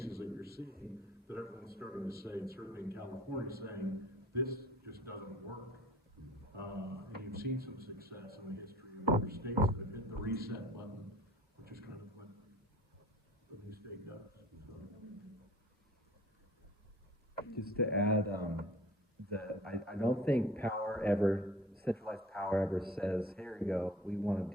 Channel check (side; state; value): both; normal; correlation 0.46